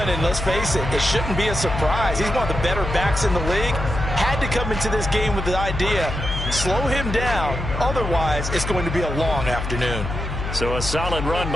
and let's face it, it shouldn't be a surprise. He's one of the better backs in the league. Had to come into this game with the idea, slow him down, otherwise it's going to be a long afternoon. So a solid run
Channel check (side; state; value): left; noise; hum, 5 dB below the sound